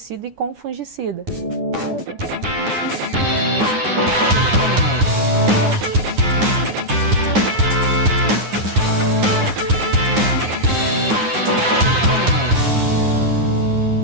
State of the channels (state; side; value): late; left; 9.7 ms